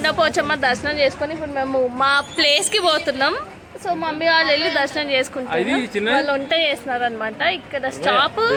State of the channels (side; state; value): both; identical; correlation 1.00